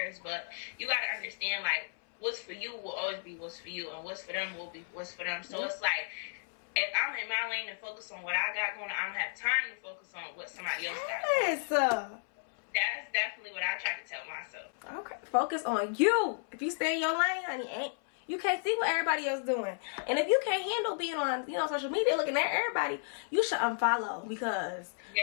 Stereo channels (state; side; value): silent; right; 56 dB below the other